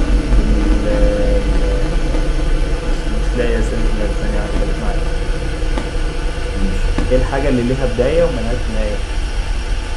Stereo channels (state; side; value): identical; both; correlation 1.00